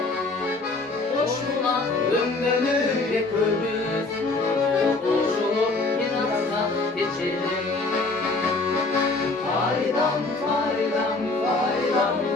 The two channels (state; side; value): quieter; right; 3.4 dB